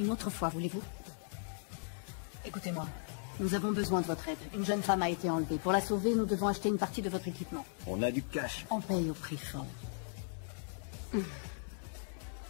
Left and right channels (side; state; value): right; silent; 53 dB below the other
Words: autre fois, voulez-vous? Écoutez-moi, nous avons besoin de votre aide. Une jeune femme a été enlevée. Pour la sauver, nous devons acheter une partie de votre équipement. On a du cash. On paye au prix fort.